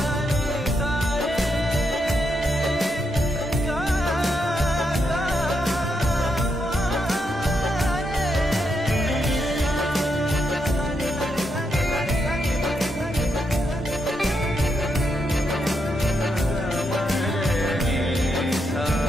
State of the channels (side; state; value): both; normal; correlation 0.81